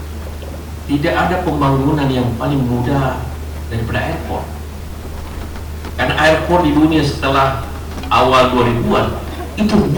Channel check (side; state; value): both; identical; correlation 1.00